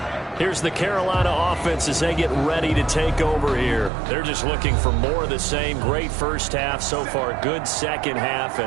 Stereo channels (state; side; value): drops out; left; at 3.9 s